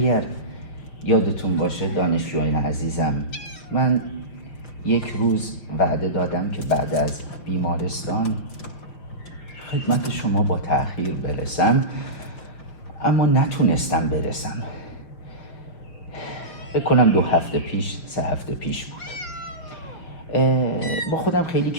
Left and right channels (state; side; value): late; right; 5.6 ms